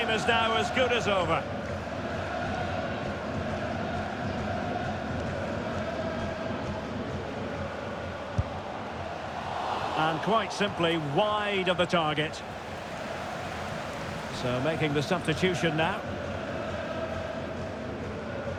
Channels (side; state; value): both; identical; correlation 1.00